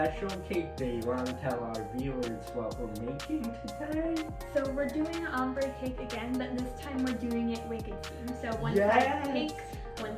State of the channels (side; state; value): both; identical; correlation 1.00